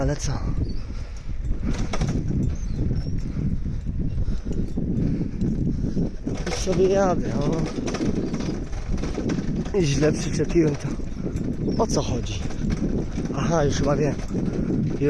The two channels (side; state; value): both; identical; correlation 1.00